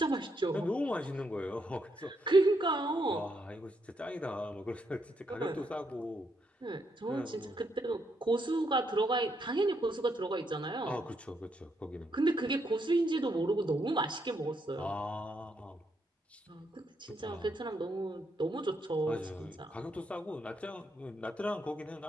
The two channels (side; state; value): both; normal; correlation 0.77